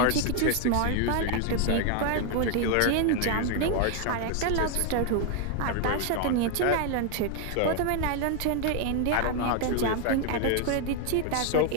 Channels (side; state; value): both; different; correlation 0.01